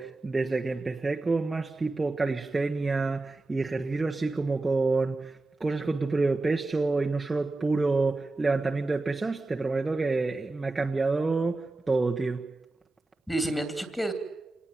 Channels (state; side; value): quieter; left; 3.2 dB